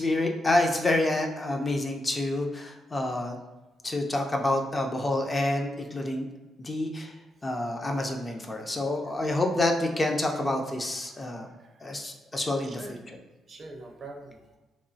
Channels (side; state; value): both; normal; correlation 0.86